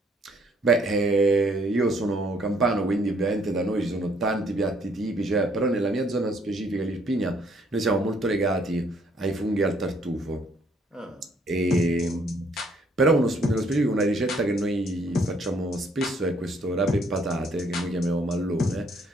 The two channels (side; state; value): both; normal; correlation 0.66